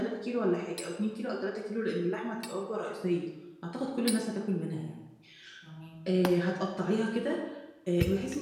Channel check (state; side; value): identical; both; correlation 1.00